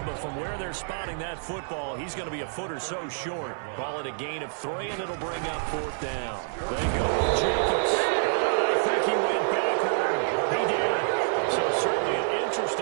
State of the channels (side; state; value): left; silent; digital silence